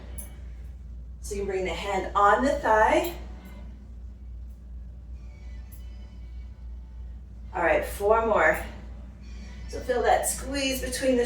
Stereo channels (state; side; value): identical; both; correlation 1.00